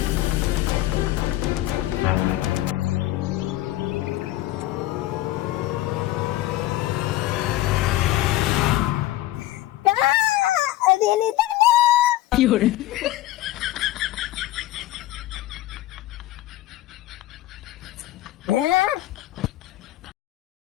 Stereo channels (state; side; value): quieter; right; 15.8 dB